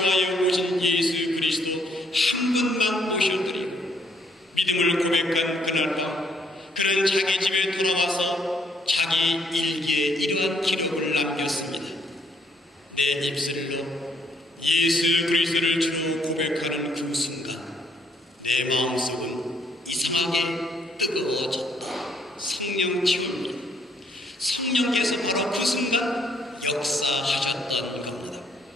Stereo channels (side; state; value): both; normal; correlation 0.68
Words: 오신 예수 그리스도 한 분만 모셔드리고 믿음을 고백한 그날 밤 그는 자기 집에 돌아와서 자기 일기에 이러한 기록을 남겼습니다. 내 입술로 예수 그리스도를 주로 고백하는 그 순간 내 마음속은 이상하게 뜨거워졌다. 성령 체험입니다. 성령께서 바로 그 순간 역사하셨던 겁니다.